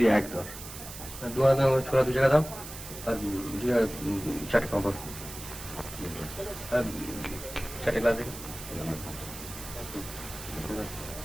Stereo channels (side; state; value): right; noise; hiss, 12 dB below the sound